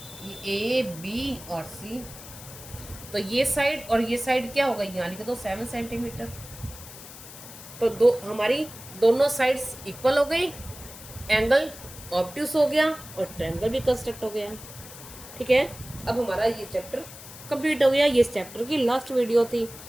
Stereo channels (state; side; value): noise; left; hiss, 15 dB below the sound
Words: ये ए बी और सी। तो ये साइड और ये साइड क्या होगा, यहाँ लिख दो 7 सेंटीमीटर। तो हमारी दोनों साइड्स इक्वल हो गई, एंगल ऑब्ट्यूस हो गया और ट्रायंगल भी कंस्ट्रक्ट हो गया। ठीक है, अब हमारा ये चैप्टर कंप्लीट हो गया। ये इस चैप्टर की लास्ट वीडियो थी।